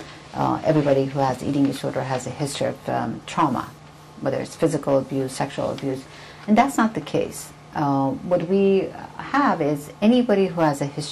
everybody who has eating disorder has a history of trauma, whether it's physical abuse, sexual abuse? And that's not the case. What we have is anybody who has a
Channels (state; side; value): identical; both; correlation 1.00